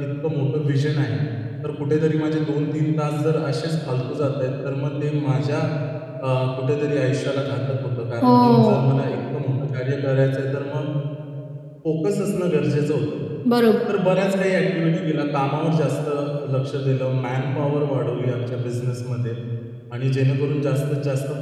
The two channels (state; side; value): identical; both; correlation 1.00